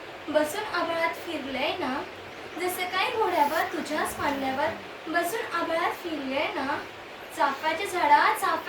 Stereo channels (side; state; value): both; identical; correlation 1.00